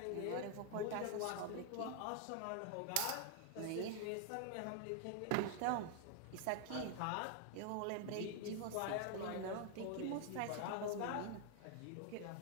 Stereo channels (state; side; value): different; both; correlation 0.00